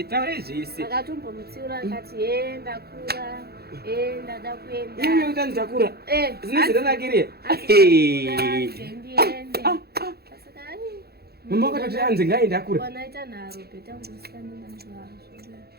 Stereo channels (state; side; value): late; left; 0.46 ms